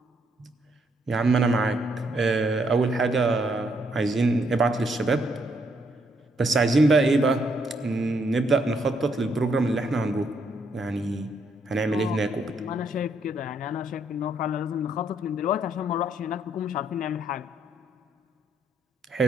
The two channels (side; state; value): both; normal; correlation 0.73